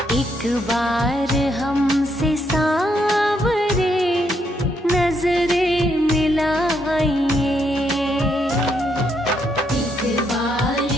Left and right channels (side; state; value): both; normal; correlation 0.76